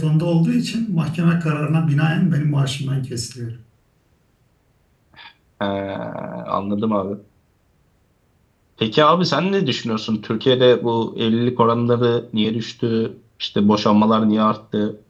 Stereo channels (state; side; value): identical; both; correlation 1.00